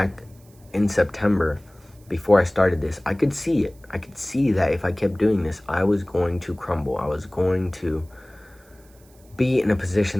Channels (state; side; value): noise; right; hiss, 29 dB below the sound